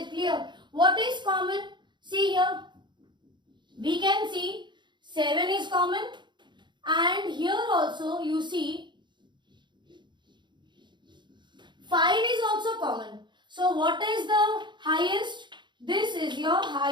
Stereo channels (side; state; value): left; late; 0.22 ms